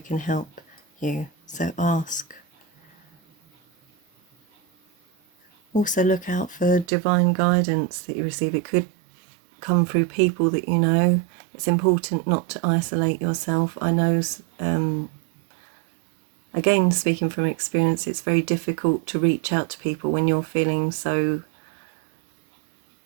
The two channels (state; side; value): drops out; left; at 6.9 s